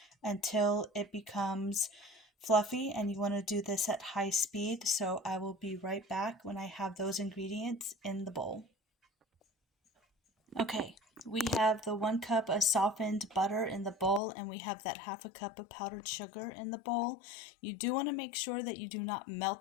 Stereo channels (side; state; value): right; drops out; at 14.2 s